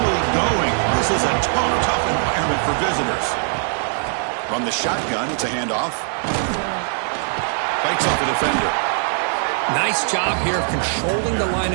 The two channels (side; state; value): left; silent; 62 dB below the other